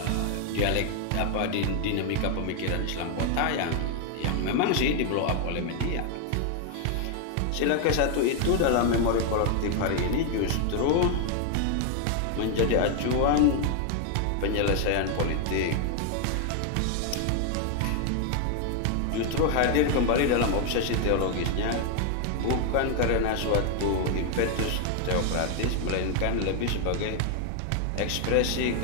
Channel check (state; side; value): different; both; correlation 0.00